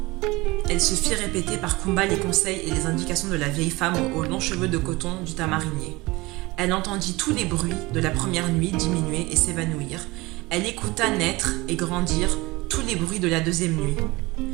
Elle se fit répéter par Kumba les conseils et les indications de la vieille femme aux longs cheveux de coton du tamarinier. Elle entendit tous les bruits de la première nuit diminuer et s'évanouir. Elle écouta naître et grandir tous les bruits de la deuxième nuit.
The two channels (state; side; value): quieter; left; 22.1 dB